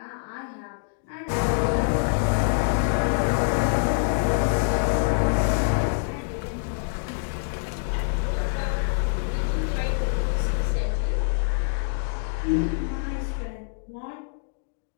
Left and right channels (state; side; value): silent; right; digital silence